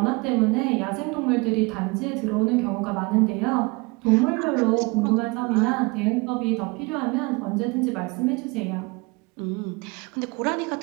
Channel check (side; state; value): left; quieter; 27.0 dB